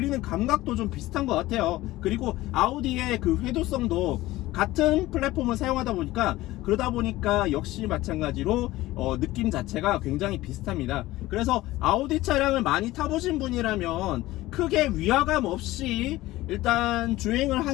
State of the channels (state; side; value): quieter; right; 17.4 dB